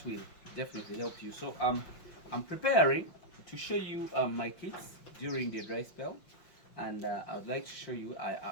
will definitely help you. So I'm preparing to show you my kits during the dry spell, and I would like to show you.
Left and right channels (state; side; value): late; right; 5.7 ms